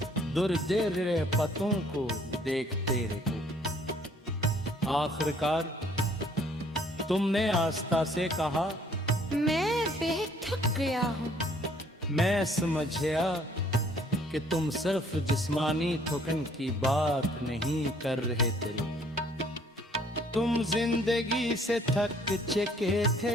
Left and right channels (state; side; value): normal; both; correlation 0.60